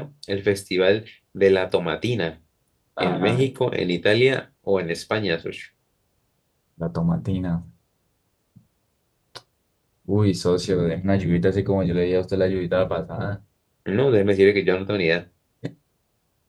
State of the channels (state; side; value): identical; both; correlation 1.00